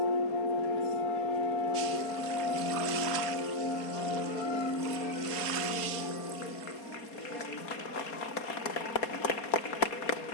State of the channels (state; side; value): late; right; 4.3 ms